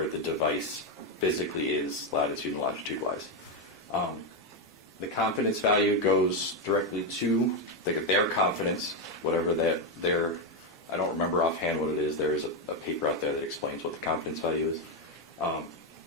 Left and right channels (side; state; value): both; normal; correlation 0.06